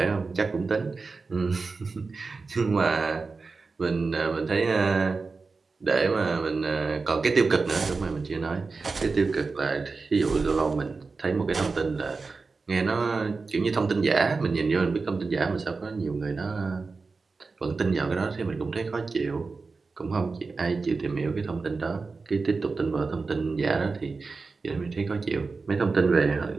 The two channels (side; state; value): left; quieter; 4.2 dB